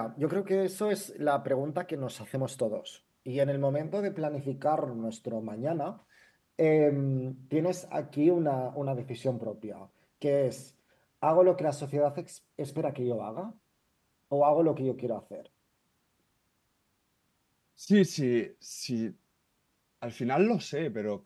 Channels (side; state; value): both; identical; correlation 1.00